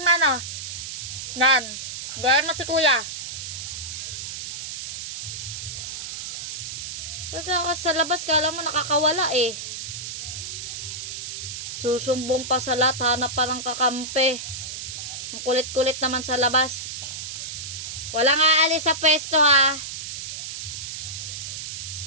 Nan. Gaya mo si kuya. Nagtakas sa labas, kala mo nakakawala eh. Susumbong pa sa lahat, hanap pa ng kakampi. Ang kulit-kulit naman sa labas. Walang aalis sa pwesto ha.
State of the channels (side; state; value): right; noise; hiss, 7 dB below the sound